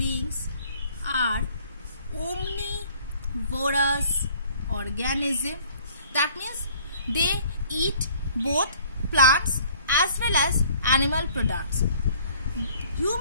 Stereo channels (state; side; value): inverted; both; correlation -0.55